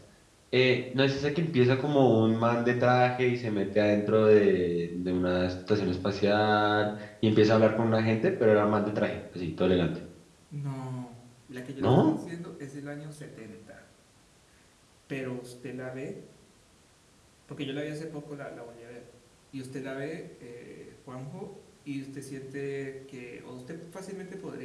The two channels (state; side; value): identical; both; correlation 1.00